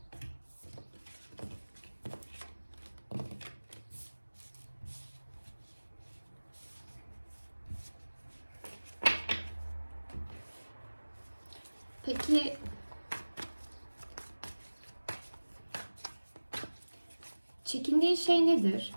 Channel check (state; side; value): inverted; both; correlation -1.00